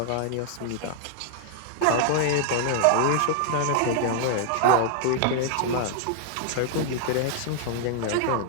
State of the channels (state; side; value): different; both; correlation -0.01